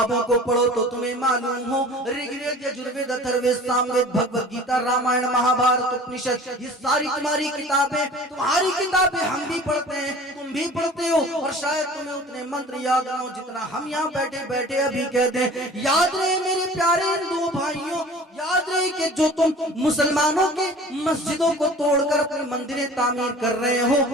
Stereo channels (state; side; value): normal; both; correlation 0.44